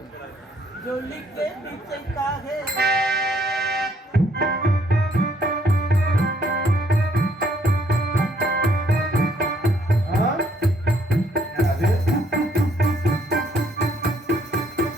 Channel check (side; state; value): both; normal; correlation 0.67